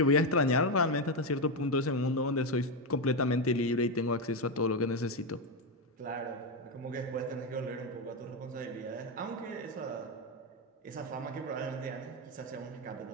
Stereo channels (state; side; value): normal; both; correlation 0.08